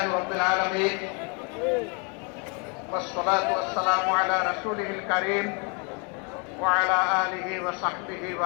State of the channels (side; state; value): right; quieter; 35.0 dB